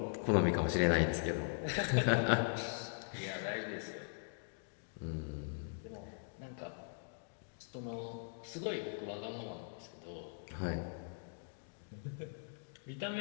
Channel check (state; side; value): silent; right; digital silence